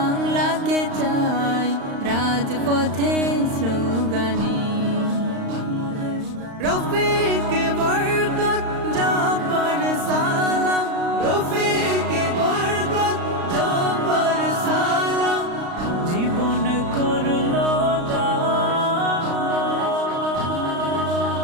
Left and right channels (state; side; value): late; left; 35 ms